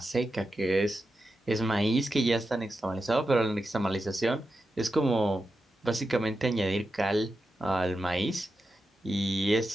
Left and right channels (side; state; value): both; normal; correlation 0.89